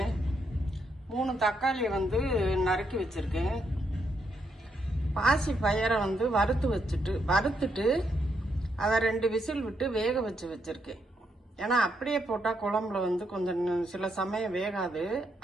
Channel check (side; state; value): both; normal; correlation 0.78